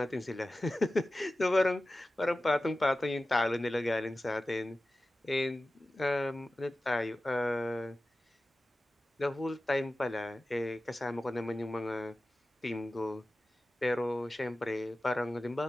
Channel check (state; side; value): normal; both; correlation 0.95